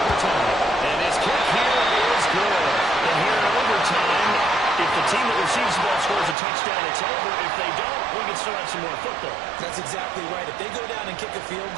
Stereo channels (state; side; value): drops out; left; at 6.4 s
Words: And his kick here is good. And here in overtime, if the team that receives the ball scores a touchdown, it's over. If they don't, we can still have some more football. That's exactly right. If they go down and kick a field